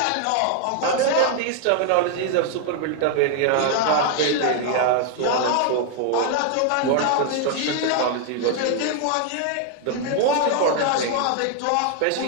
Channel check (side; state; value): both; different; correlation 0.00